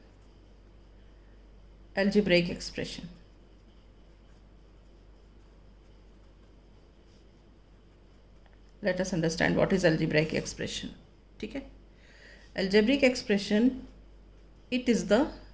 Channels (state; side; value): identical; both; correlation 1.00